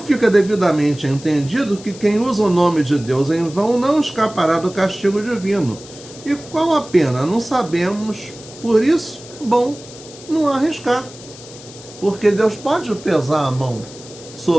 fica devidamente entendido que quem usa o nome de Deus em vão não escapará do castigo divino. E qual a pena? Não sabemos. Por isso, é bom não arriscar. Porque Deus pode pesar a mão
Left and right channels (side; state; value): left; noise; hiss, 18 dB below the sound